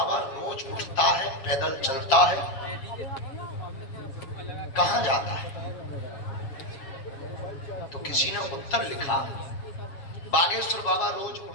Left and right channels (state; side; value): late; right; 7.2 ms